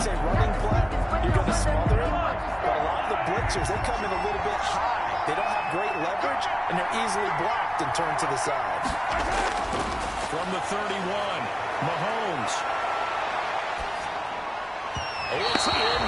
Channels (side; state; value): both; identical; correlation 1.00